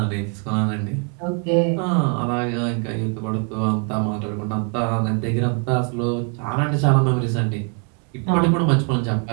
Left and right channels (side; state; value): left; quieter; 37.5 dB